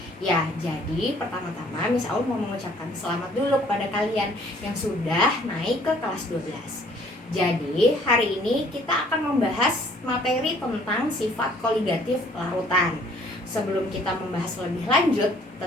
Ya, jadi pertama-tama Miss Aul mau mengucapkan selamat dulu kepada kalian yang sudah naik ke kelas 12. Jadi, hari ini kita akan membahas materi tentang sifat koligatif larutan. Sebelum kita membahas lebih lanjut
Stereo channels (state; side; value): normal; both; correlation 0.58